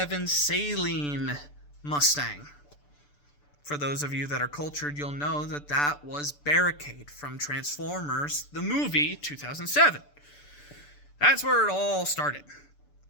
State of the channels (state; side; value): late; right; 6.8 ms